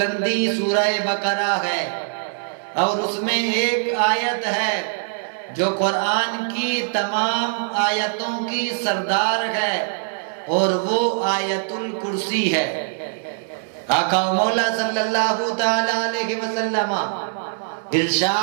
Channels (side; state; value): left; silent; digital silence